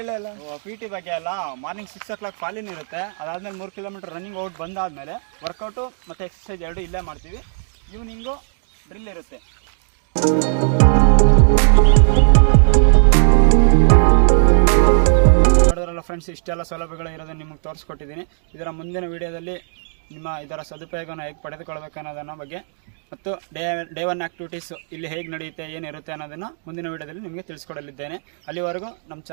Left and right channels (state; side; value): silent; left; digital silence